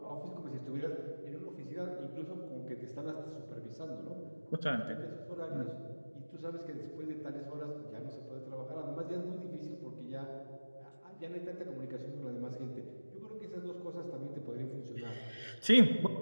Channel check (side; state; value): both; inverted; correlation -1.00